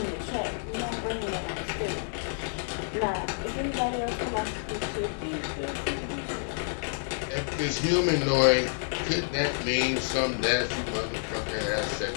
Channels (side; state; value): right; silent; digital silence